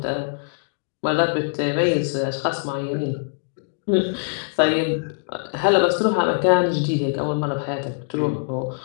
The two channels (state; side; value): silent; right; digital silence